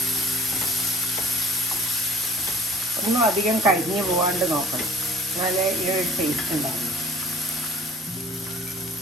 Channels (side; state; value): both; normal; correlation 0.50